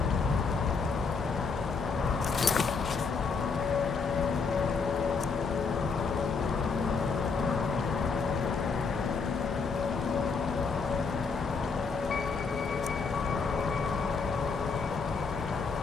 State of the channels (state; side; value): quieter; right; 5.0 dB